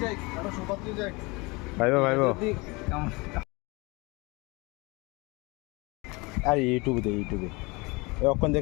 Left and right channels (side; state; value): right; quieter; 26.0 dB